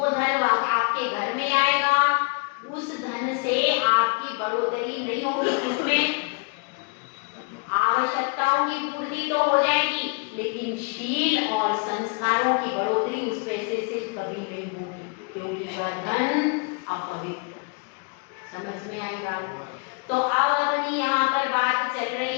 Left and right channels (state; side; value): quieter; right; 33.1 dB